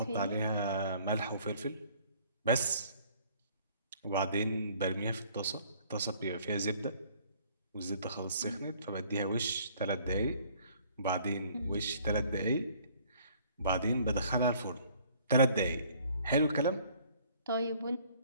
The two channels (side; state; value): both; inverted; correlation -0.57